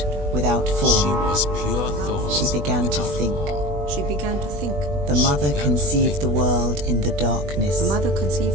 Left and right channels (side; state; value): left; late; 20 ms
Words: without form. She was pure thought. She began to think. She began to think. The mother conceived the world in the darkness. The mother